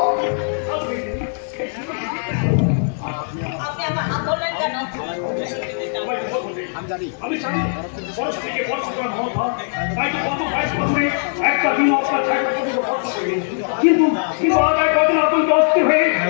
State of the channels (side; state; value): right; silent; digital silence